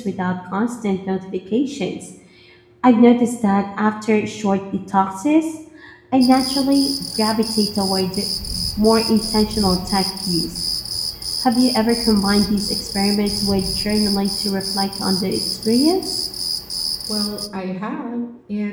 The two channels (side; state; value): both; identical; correlation 1.00